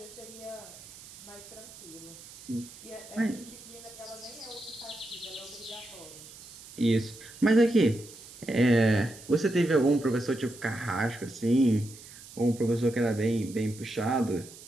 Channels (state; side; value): noise; right; hiss, 18 dB below the sound